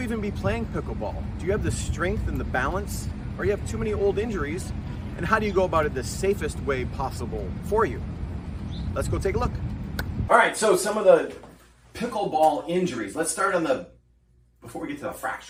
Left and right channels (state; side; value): identical; both; correlation 1.00